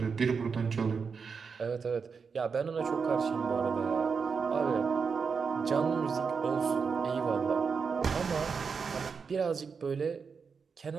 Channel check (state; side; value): quieter; left; 5.6 dB